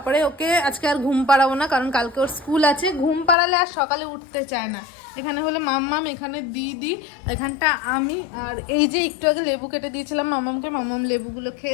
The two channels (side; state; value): right; drops out; at 3.4 s